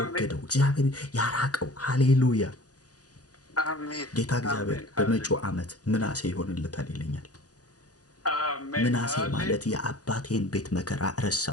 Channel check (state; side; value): late; right; 0.67 ms